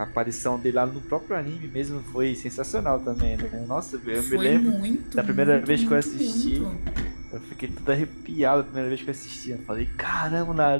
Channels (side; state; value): both; inverted; correlation -1.00